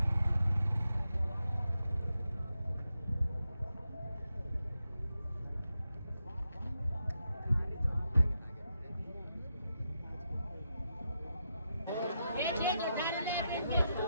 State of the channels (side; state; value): both; inverted; correlation -0.85